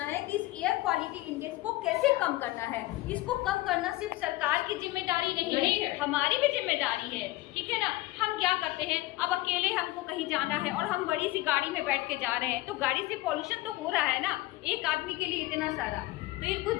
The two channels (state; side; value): quieter; right; 18.7 dB